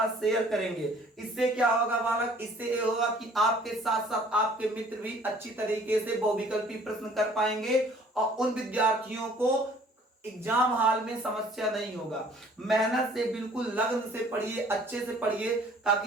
शेयर करेंगे। इससे क्या होगा बालक, इससे ये होगा कि आपके साथ साथ आपके मित्र भी अच्छी तरीके से बहुविकल्पी प्रश्न कर पाएंगे और उन विद्यार्थियों को एग्जाम हॉल में समस्या नहीं होगा। मेहनत से बिल्कुल लगन से पढ़िए, अच्छे से पढ़िए,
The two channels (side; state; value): both; normal; correlation 0.55